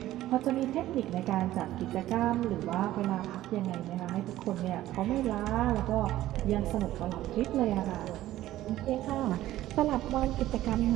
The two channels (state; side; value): quieter; left; 14.6 dB